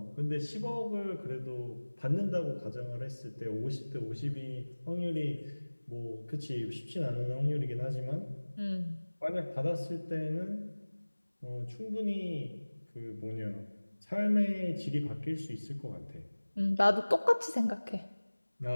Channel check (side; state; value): both; inverted; correlation -1.00